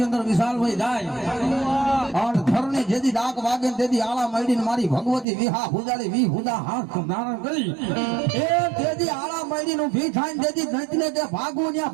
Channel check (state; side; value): drops out; left; at 5.2 s